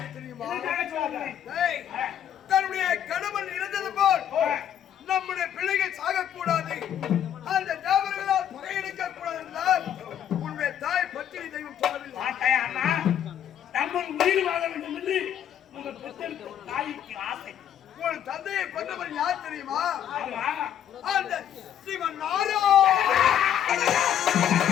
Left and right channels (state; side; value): quieter; right; 10.0 dB